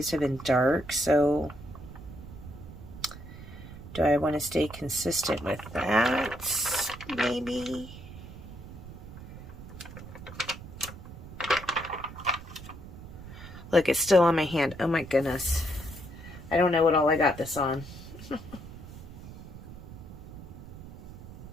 have been dark, so do I want to stay consistent with that? Maybe. Look, it's still on my hand. Oh my goodness. I don't know what all I got this on.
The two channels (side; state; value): right; noise; rumble, 14 dB below the sound